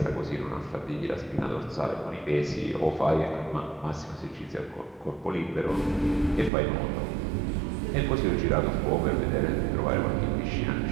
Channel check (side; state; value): left; drops out; at 6.5 s